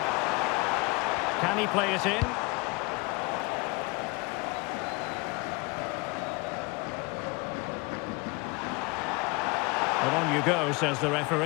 Can he play it in? Well, on you go, says the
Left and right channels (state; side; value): quieter; right; 26.9 dB